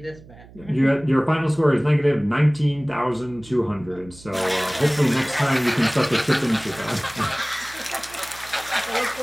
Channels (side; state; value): right; noise; hum, 21 dB below the sound